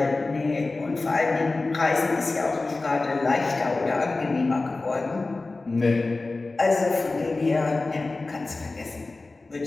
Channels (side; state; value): right; quieter; 3.4 dB